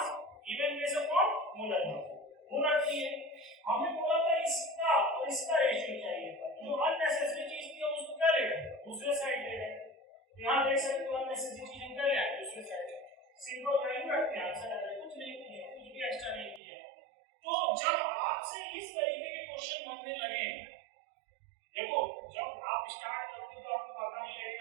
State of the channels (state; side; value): drops out; left; at 16.6 s